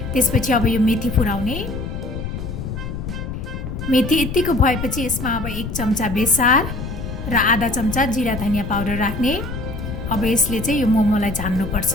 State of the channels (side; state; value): left; noise; rumble, 6 dB below the sound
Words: त्यसपछि अब यो मेथी फुराउने। मेथी यतिको भएपछि यसमा अब 1 चम्चा बेसार र आधा चम्चा जिरा धनिया पाउडर राख्ने। अब यसले चाहिँ यो मोमोलाई झान्नुपर्छ।